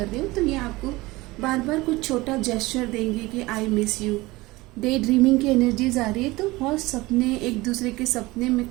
रहे हो, तो ये आपको बार बार कुछ छोटा जेस्चर देंगे कि I miss you. Day dreaming की एनर्जीज आ रही है, तो बहुत सपने, एक दूसरे के सपने में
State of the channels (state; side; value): quieter; left; 20.8 dB